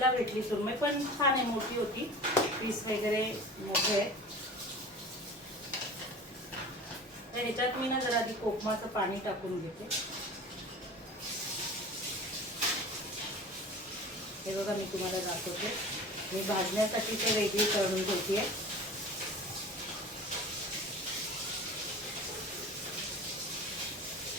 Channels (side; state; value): both; normal; correlation 0.38